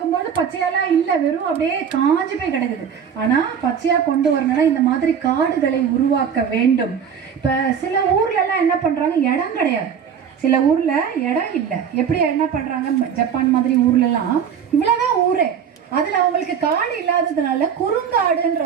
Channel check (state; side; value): quieter; left; 7.6 dB